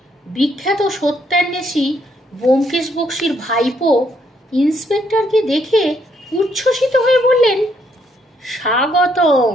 বিখ্যাত সত্যান্বেষী ব্যোমকেশ বক্সীর ভাইপো ইন্সপেক্টরকে দেখে উচ্ছ্বসিত হয়ে বললেন, স্বাগতম।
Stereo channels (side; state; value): both; normal; correlation 0.72